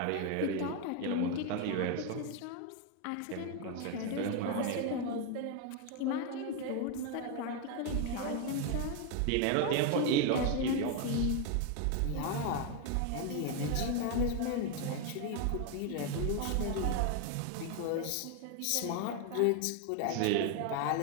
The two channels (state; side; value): different; both; correlation 0.01